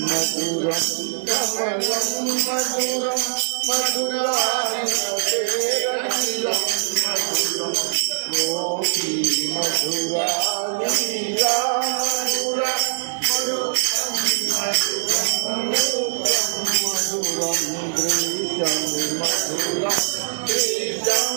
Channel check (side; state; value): left; silent; digital silence